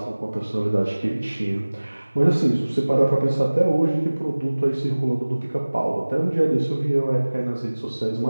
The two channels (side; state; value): both; inverted; correlation -1.00